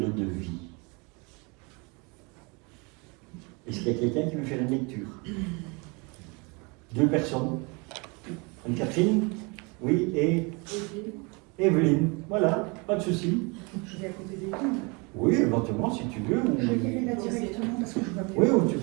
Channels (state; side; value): quieter; left; 29.8 dB